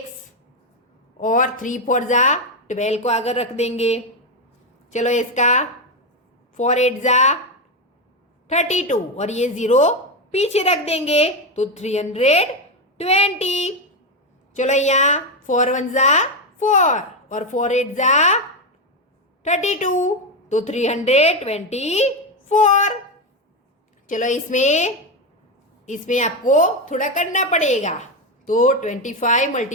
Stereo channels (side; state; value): both; normal; correlation 0.10